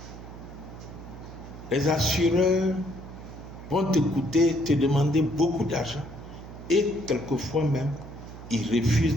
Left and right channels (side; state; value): right; noise; hum, 14 dB below the sound